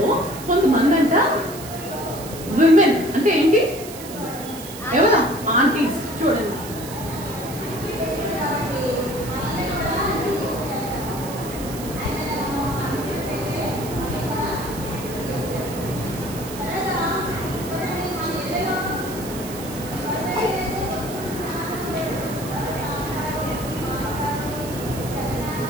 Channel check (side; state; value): right; noise; hiss, 13 dB below the sound